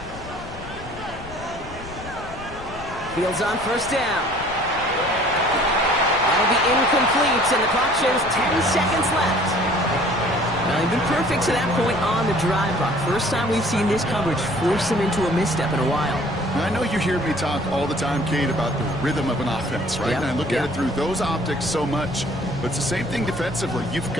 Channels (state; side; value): noise; left; rumble, 15 dB below the sound